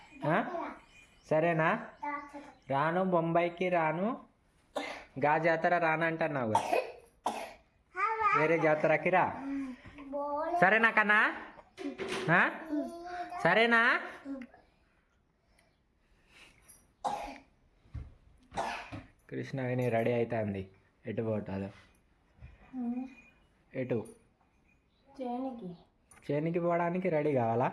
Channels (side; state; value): both; identical; correlation 1.00